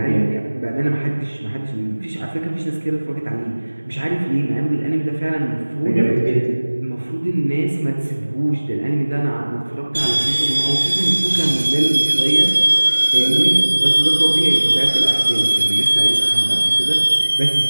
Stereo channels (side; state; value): both; inverted; correlation -1.00